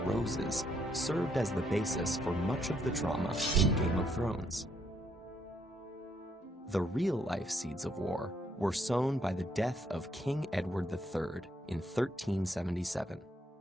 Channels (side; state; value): both; normal; correlation 0.72